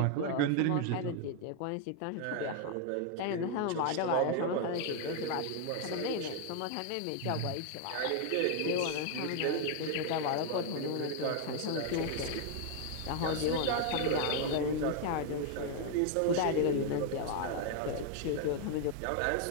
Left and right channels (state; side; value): different; both; correlation 0.00